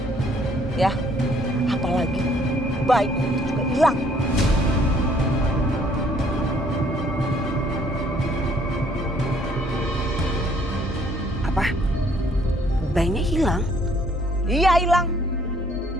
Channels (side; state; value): both; normal; correlation 0.63